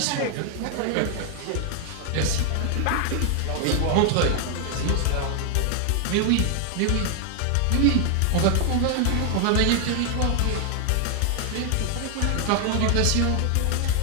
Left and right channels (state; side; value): different; both; correlation 0.00